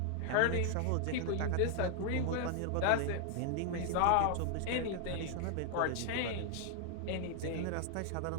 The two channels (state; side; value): different; both; correlation 0.00